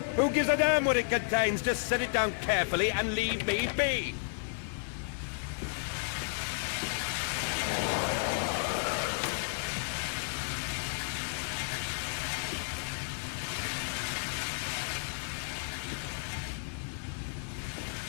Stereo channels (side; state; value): right; silent; digital silence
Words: Who gives a damn what it contains? Just set it down carefully and leave me be.